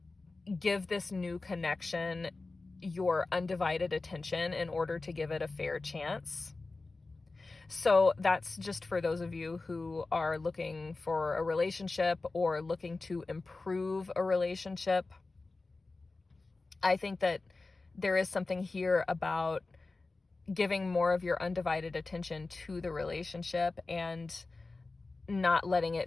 give this new connection your undivided attention in order to give it a fair chance. So that's just for those of you who are looking for a relationship or looking to improve a relationship. I think that there is something here about giving more of your undivided attention to the relationship and not letting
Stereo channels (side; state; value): right; quieter; 3.5 dB